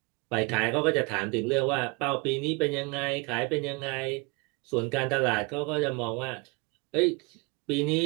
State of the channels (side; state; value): left; quieter; 29.1 dB